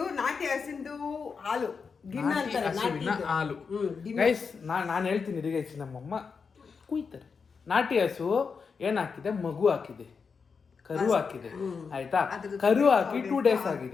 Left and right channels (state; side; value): quieter; right; 5.5 dB